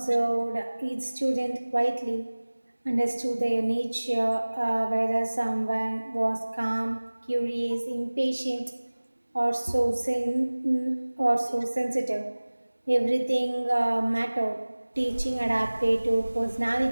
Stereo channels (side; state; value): both; inverted; correlation -1.00